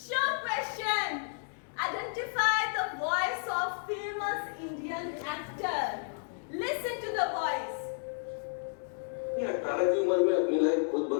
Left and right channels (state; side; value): silent; right; digital silence